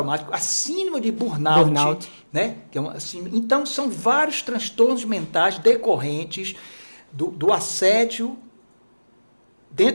a síndrome de burnout. Né? Então, são vários transtornos mentais decorrentes do assédio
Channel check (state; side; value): inverted; both; correlation -1.00